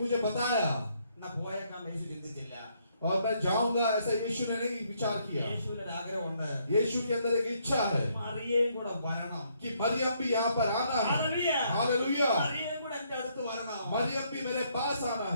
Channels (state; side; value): inverted; both; correlation -0.71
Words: मुझे बताया എന്നാ പോയേക്കാം യേശു ചിന്തിച്ചില്ല. और मैं जाऊंगा ऐसा यीशु ने नहीं विचार किया। യേശുവിന് ഒരു ആഗ്രഹമുണ്ട്. यीशु के अंदर एक इच्छा है മറിയയും കൂടെ വരണം. कि मरियम भी यहाँ पर आना है। ഹല്ലേലൂയ. हालेलुया। മറിയയും കൂടെ എന്റെ അടുത്ത് വരണം. मरियम भी मेरे पास आना